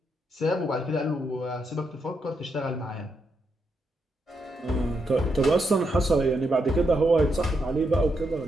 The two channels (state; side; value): normal; both; correlation 0.81